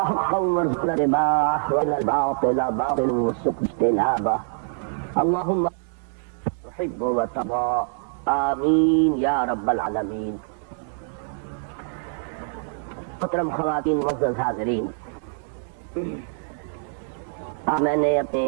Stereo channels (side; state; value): left; silent; digital silence